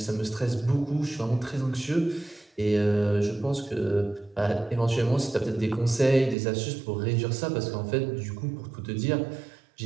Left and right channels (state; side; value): drops out; left; at 6.4 s